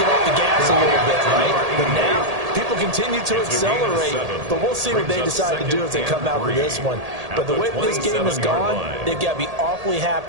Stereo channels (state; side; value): late; left; 1.8 ms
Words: off the gas a little bit, right? But now, people continue to accelerate. But we'll see what they decide to do as they come out with this one. But the way this game has gone, they've got to be awfully